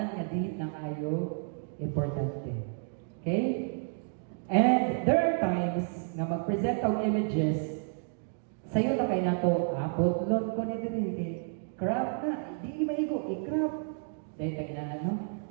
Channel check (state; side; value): silent; left; 57 dB below the other